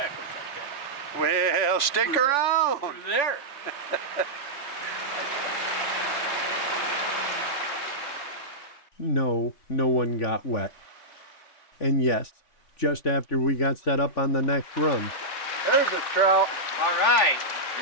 like that. Well, stick around. Through there. No one got wet. And yes, just after we got set up on the next run, There's a trout. All right.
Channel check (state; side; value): late; right; 3.4 ms